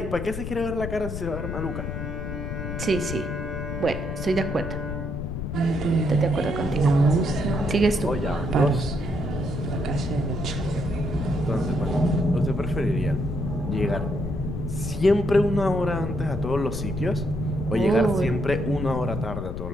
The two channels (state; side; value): noise; left; rumble, 5 dB below the sound